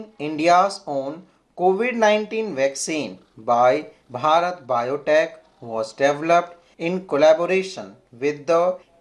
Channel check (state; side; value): identical; both; correlation 1.00